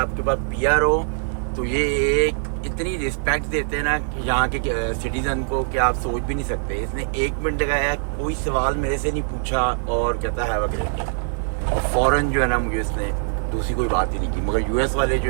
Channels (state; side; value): silent; left; 57 dB below the other